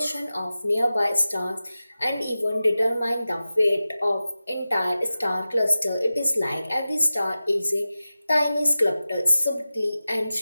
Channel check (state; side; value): inverted; both; correlation -0.95